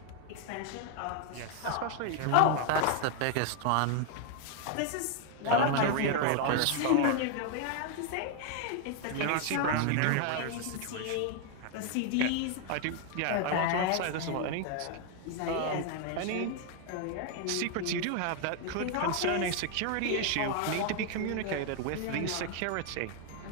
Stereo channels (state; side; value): different; both; correlation 0.00